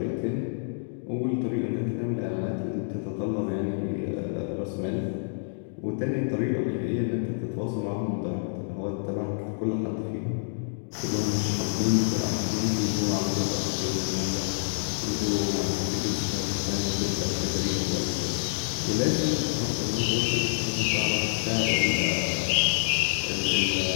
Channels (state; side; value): silent; right; digital silence